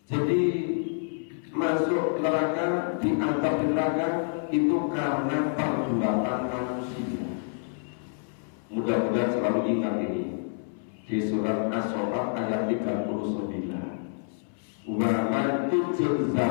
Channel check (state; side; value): silent; right; 60 dB below the other